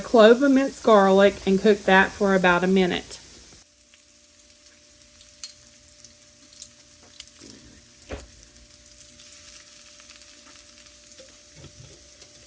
of minced garlic and cook that for about a minute.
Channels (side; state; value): both; identical; correlation 1.00